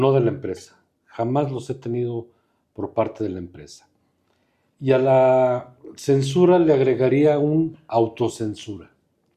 de la empresa. Jamás los he tenido por parte de la empresa. Y a la censura le agregaría un autocensura.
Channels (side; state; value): both; identical; correlation 1.00